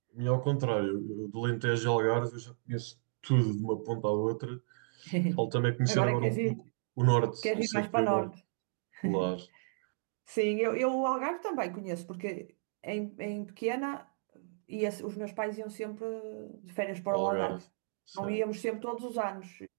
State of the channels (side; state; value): left; silent; digital silence